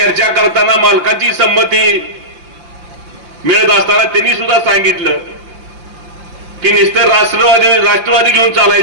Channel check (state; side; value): late; left; 5.8 ms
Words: करताना मालकांची संमती मिळत असताना त्यांनी सुद्धा सांगितलं की नुसतं राष्ट्रवादी घेऊन